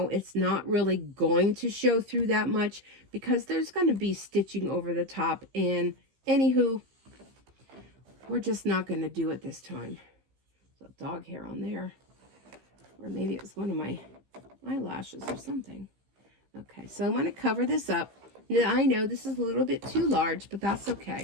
it's not really going to show through that much because there's going to be stitching over the top. And anywho, we're just not going to do it this time. There's a dog hair on there. Or maybe it was one of my eyelashes or something. Okay, so I'm going to cover this up. Now, I know this is a little bit too large, but that's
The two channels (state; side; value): late; left; 15 ms